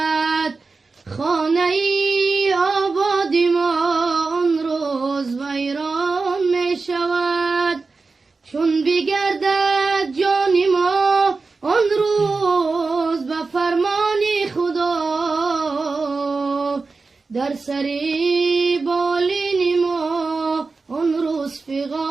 خانه ای آبادی ما آن روز ویران می شود. چون بگردد جان ما آن روز به فرمان خدا، در سری بالین ما آن روز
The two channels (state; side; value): quieter; left; 4.1 dB